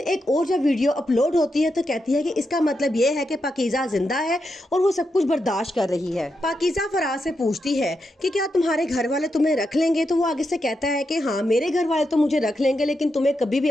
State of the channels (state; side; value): normal; both; correlation 0.85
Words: एक और जब वीडियो अपलोड होती है तो कहती है कि इसका मतलब ये है कि पाकीज़ा जिंदा है और वो सब कुछ बर्दाश्त कर रही है। पाकीज़ा फराज से पूछती है कि क्या तुम्हारे घर वाले तुम्हें रख लेंगे, तो वो आगे से कहता है कि हाँ, मेरे घर वाले तो मुझे रख लेंगे लेकिन तुम्हें कभी भी